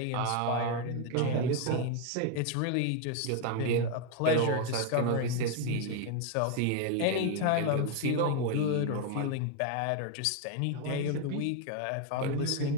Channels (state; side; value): different; both; correlation 0.01